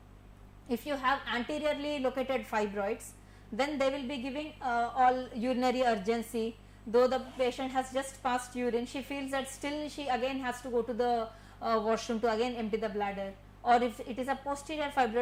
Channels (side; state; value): both; identical; correlation 1.00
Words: If you have anteriorly located fibroids, then they will be giving all urinary urgency. Though the patient has just passed urine, she feels that still she again has to go to the washroom to again empty the bladder. Or if it is a posterior